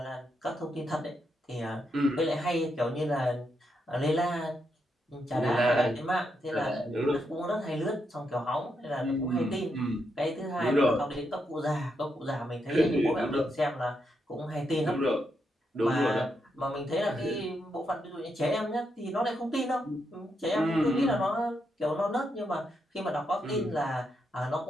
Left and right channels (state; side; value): normal; both; correlation 0.81